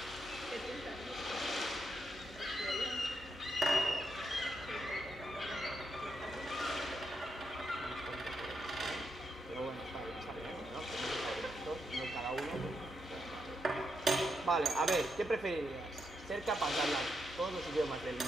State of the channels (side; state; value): both; normal; correlation 0.82